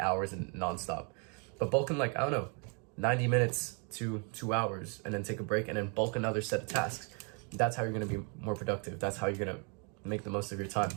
hours and nonstop. But bulk in like, I don't know, 90 minutes to 2 hours and then take a break and then bulk another set of tasks. That's how you're going to be more productive. That's how you're going to make the most of your time.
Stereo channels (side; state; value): left; quieter; 36.7 dB